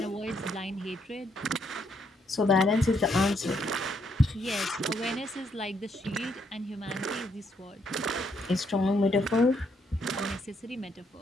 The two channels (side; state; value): both; normal; correlation 0.74